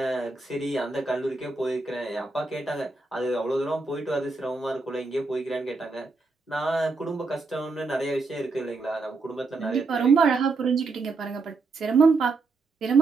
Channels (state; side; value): quieter; left; 3.8 dB